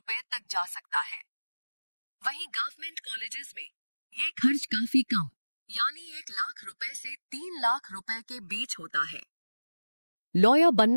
तक जा सकता है। वहीं गवर्नमेंट कॉलेजेस में ये खर्च काफी कम, यानी 1 लाख रुपए से 3 लाख रुपए के बीच होता है। लॉयर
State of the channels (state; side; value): inverted; both; correlation -1.00